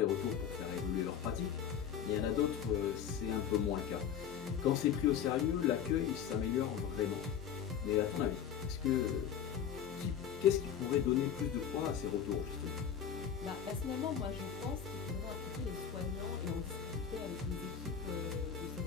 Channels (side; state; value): right; quieter; 8.4 dB